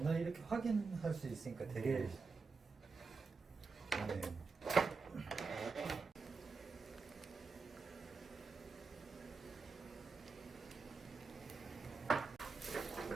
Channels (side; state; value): left; quieter; 4.6 dB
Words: 이렇게 확인할 수 있으니까 되게 좋네요.